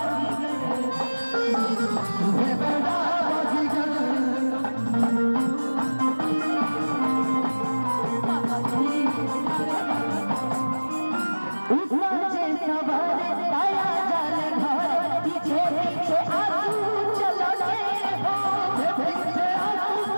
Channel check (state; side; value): inverted; both; correlation -1.00